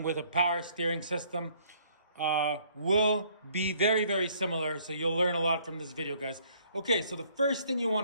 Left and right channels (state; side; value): inverted; both; correlation -0.62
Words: with a power steering system will be very similar. So you'll learn a lot from this video, guys. Okay, so the first thing you